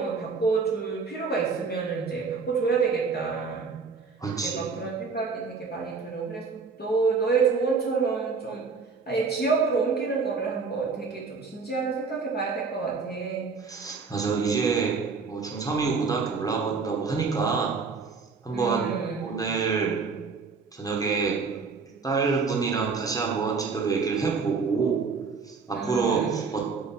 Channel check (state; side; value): quieter; left; 4.9 dB